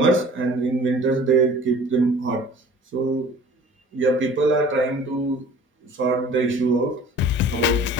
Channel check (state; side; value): normal; both; correlation 0.46